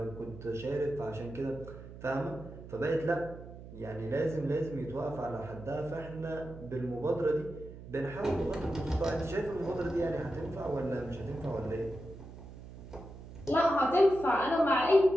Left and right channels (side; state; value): right; noise; hum, 14 dB below the sound